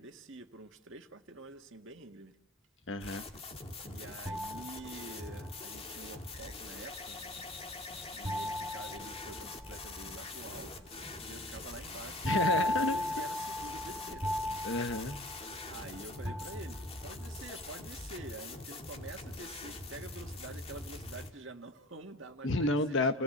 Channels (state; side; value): normal; both; correlation 0.44